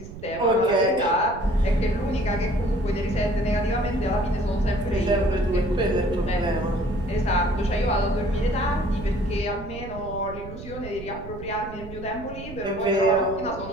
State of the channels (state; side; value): noise; right; rumble, 13 dB below the sound